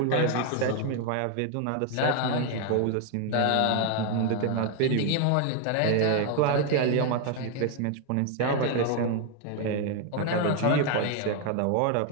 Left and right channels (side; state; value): both; different; correlation 0.01